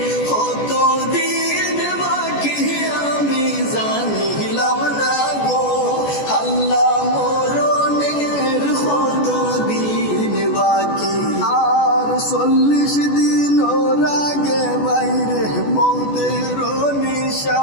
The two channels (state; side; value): late; right; 14 ms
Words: কত দিন বাকি আমি জানিলাম না গো আল্লাহ মরণের কত দিন বাকি আর 40 দিন ওর আগে বাইরে মৌতের